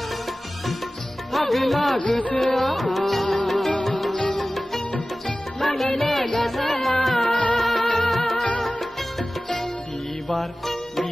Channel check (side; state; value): both; normal; correlation 0.97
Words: आगला गोसोआ आगले गोसोआ